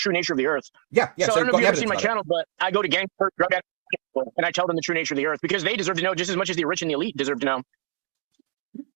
nature of the Earth. Yeah. So I don't know if you've ever seen my channel. channel, but I go to gangs, drug addicts, and I tell them the true nature of the Earth because they deserve to know just as much as the rich and the elite deserve to know.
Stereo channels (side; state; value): left; silent; 62 dB below the other